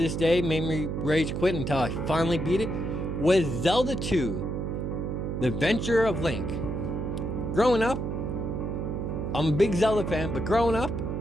day made me rage quit until I finally beat it, was Zelda 2, The Adventure of Link. Growing up, I'm a big Zelda fan, but growing up,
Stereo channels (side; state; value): right; noise; hum, 3 dB below the sound